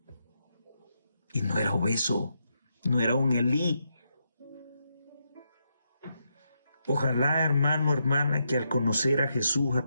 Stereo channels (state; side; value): inverted; both; correlation -0.81